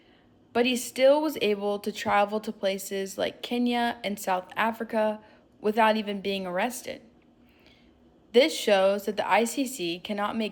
but he still was able to travel to places like Kenya and South Africa without even being arrested. This shows that the ICC cannot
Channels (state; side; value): identical; both; correlation 1.00